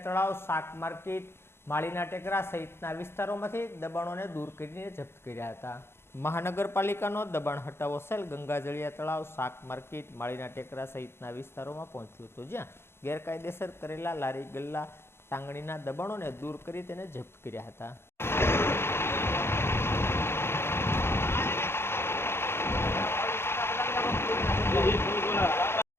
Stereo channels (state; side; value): late; right; 0.12 ms